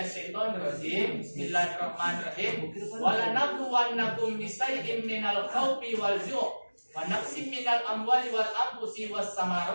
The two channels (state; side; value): inverted; both; correlation -1.00